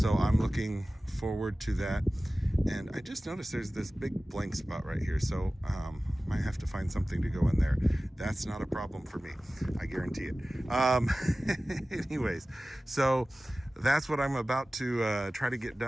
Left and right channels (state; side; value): normal; both; correlation 0.97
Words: I'm looking forward to that. And I just noticed there's this big blank spot right here, so might have to find something to go in there. That's not a problem for me, I guarantee it. Anyways, so that's what I'm about to try to get